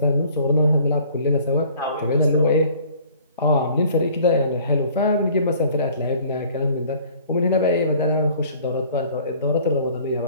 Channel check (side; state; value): both; inverted; correlation -0.53